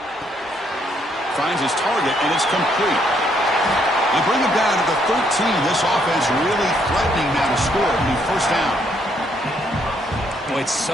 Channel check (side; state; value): both; normal; correlation 0.71